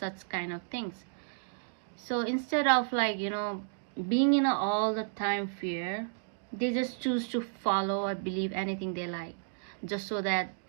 kind of things. So instead of, like, being in all the time fear, they just choose to follow or believe anything they like, just so that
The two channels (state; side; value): silent; left; digital silence